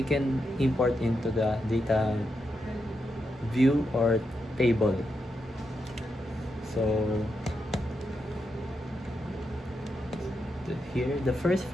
can import into the data view or table. So here, the first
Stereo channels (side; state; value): both; normal; correlation 0.84